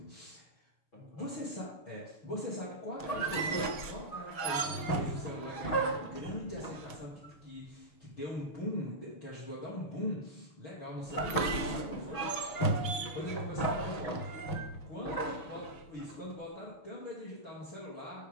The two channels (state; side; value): late; right; 6.3 ms